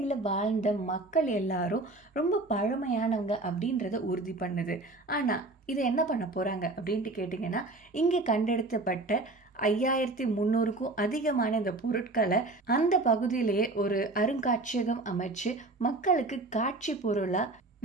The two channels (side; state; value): left; quieter; 3.0 dB